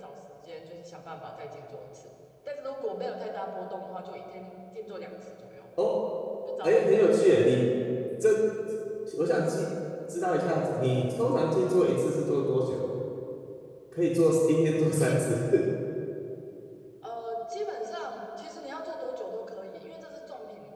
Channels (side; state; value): both; identical; correlation 1.00